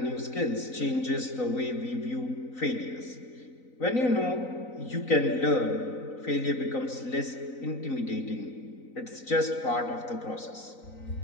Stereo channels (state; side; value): late; right; 4.0 ms